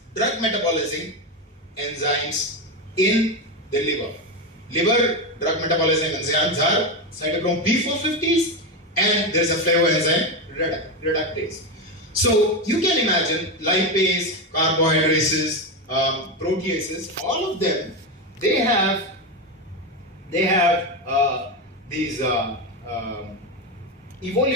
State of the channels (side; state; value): both; normal; correlation 0.13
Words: drug metabolizing enzymes in the liver. Liver drug metabolizing enzymes are cytochrome P450s and there's a flavoenzyme reductase. So you can imagine lipase, carbohydrates, proteases, all of them, they have these